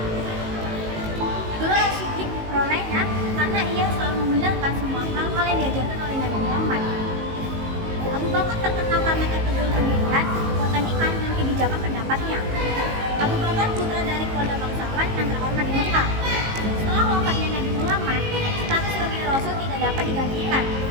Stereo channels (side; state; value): left; late; 19 ms